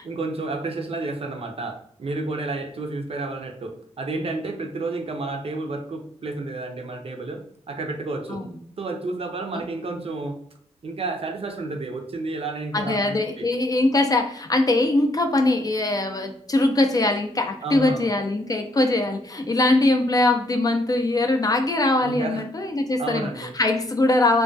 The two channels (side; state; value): both; normal; correlation 0.68